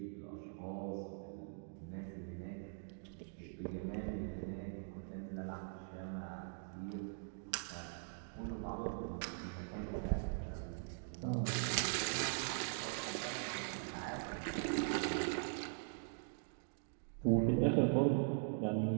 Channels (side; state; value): left; silent; digital silence